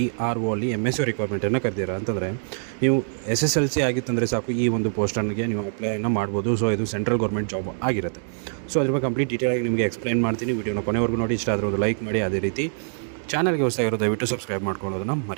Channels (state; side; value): silent; left; 62 dB below the other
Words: ಅಲ್ಲಿ MSc ರಿಕ್ವೈರ್ಮೆಂಟನ್ನು ಕರೆದಿರ ಅಂತಂದರೆ ನೀವು SSLC ಆಗಿತ್ತಂದರೆ ಸಾಕು, ಈ ಒಂದು ಪೋಸ್ಟನ್ಗೆ ನೀವು ಅಪ್ಲೈನ ಮಾಡ್ಬೋದು. ಸೊ ಇದು ಸೆಂಟ್ರಲ್ ಗೌರ್ಮೆಂಟ್ ಜಾಬ್ ಆಗಿರುತ್ತೆ. ಸೊ ಅದ್ರ ಬಗ್ಗೆ ಕಂಪ್ಲೀಟ್ ಡೀಟೇಲಾಗಿ ನಿಮಗೆ ಎಕ್ಸ್ಪ್ಲೈನ್ ಮಾಡ್ತೀನಿ. ವಿಡಿಯೋನ ಕೊನೆವರೆಗೂ ನೋಡಿ. ಇಷ್ಟ ಆದರೆ ಒಂದು ಲೈಕ್ ಮಾಡಿ. ಅದೇ ರೀತಿ ಚಾನಲ್ಗೆ ಹೊಸದಾಗಿರೋ ದಯವಿಟ್ಟು ಸಬ್ಸ್ಕ್ರೈಬ್ ಮಾಡ್ಕೊಳ್ಳೋದನ್ನು